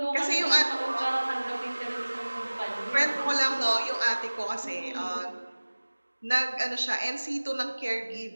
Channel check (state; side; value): inverted; both; correlation -1.00